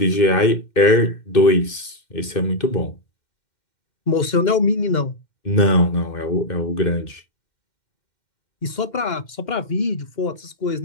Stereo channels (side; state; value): right; late; 2.1 ms